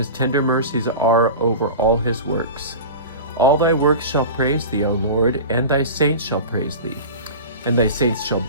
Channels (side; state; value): both; inverted; correlation -0.31